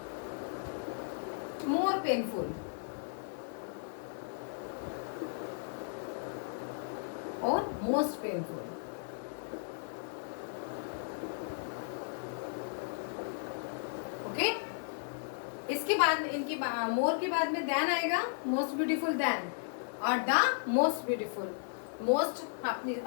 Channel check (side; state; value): right; silent; 54 dB below the other